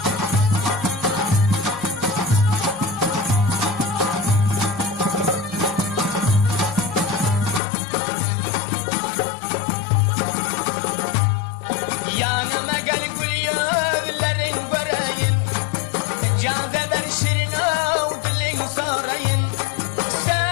Yanıma gel gül yüzlerin göreyim Caze ben şirin av dilin sorayım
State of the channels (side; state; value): right; drops out; at 7.6 s